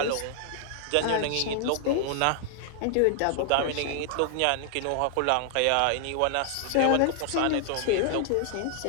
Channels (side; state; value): both; different; correlation 0.00